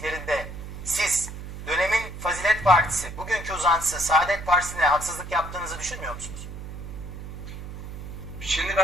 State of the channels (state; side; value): noise; right; hum, 10 dB below the sound